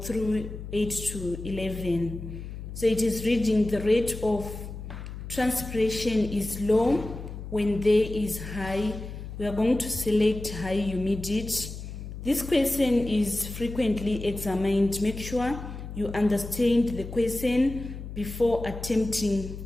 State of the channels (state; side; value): noise; left; hum, 10 dB below the sound